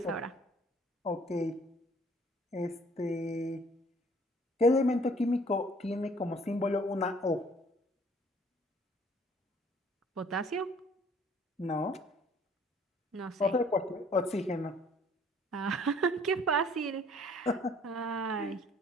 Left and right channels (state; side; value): normal; both; correlation 0.57